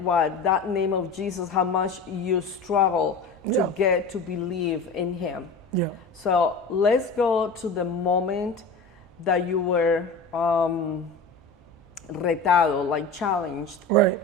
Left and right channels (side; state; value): right; quieter; 3.5 dB